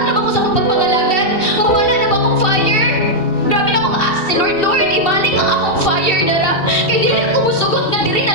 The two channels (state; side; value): late; right; 2.7 ms